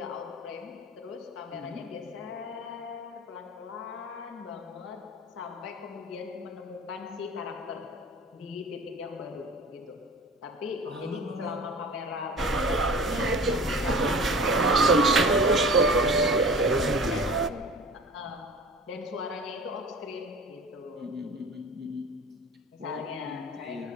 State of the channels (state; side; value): normal; both; correlation 0.39